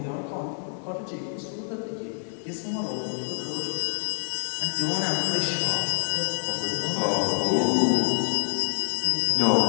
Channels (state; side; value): silent; right; digital silence